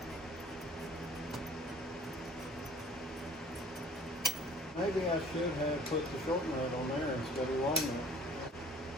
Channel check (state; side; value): normal; both; correlation 0.51